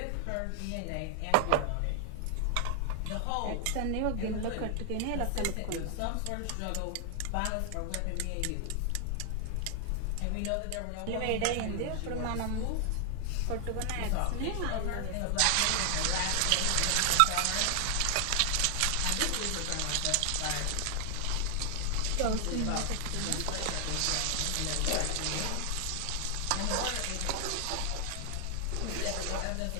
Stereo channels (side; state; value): both; different; correlation 0.00